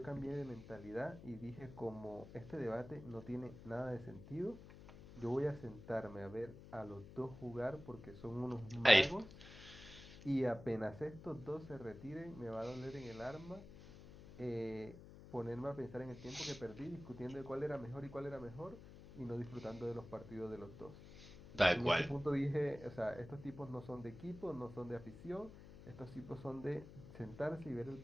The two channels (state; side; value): noise; left; hum, 16 dB below the sound